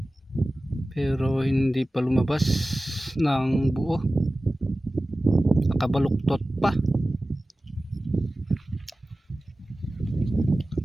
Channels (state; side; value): normal; both; correlation 0.96